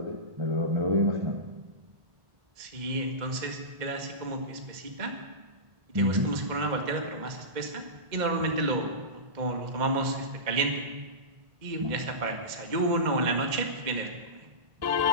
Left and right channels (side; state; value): left; late; 2.1 ms